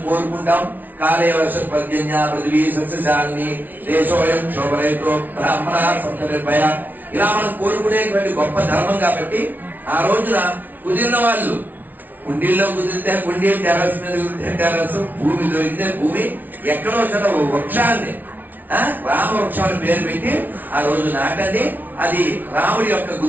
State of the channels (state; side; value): late; left; 0.083 ms